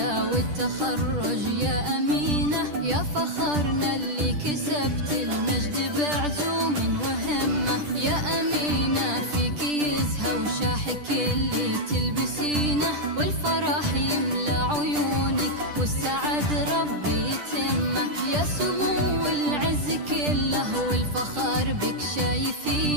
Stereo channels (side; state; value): left; late; 10 ms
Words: والتخرج يا أمينة، يا فخرنا اللي كسبت المجد بعزوم وهمة. يا أمينة فيك يزهى وشاحك اللي تلبسينه، والفرح يملى عيونك والسعد ربي يتمه. يا سمو العز كله والفخر بك